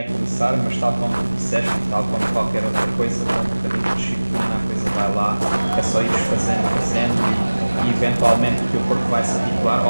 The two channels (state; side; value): inverted; both; correlation -1.00